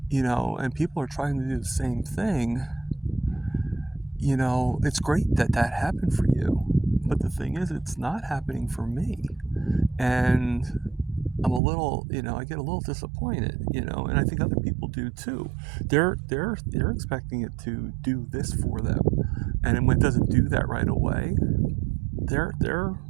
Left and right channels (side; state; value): left; drops out; at 11.6 s